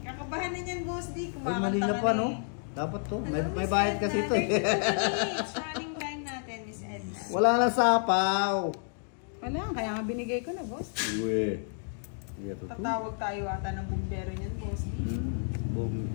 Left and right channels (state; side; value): silent; right; 58 dB below the other